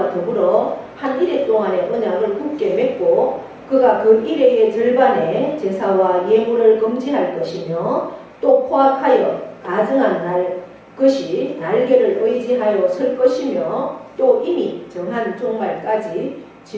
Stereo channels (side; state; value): both; identical; correlation 1.00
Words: 더불어 한 이래 동안의 언약을 굳게 맺고 그가 그 이래의 절반의 제사와 예물을 금지할 것이며 또 포악하여 가증한 것이 날개를 의지하여 설 것이며 또 이미 정한 종말까지